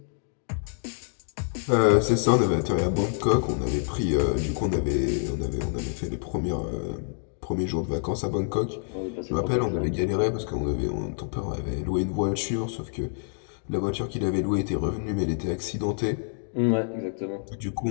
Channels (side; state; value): right; silent; digital silence